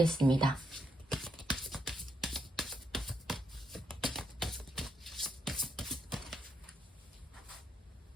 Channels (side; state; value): both; normal; correlation 0.78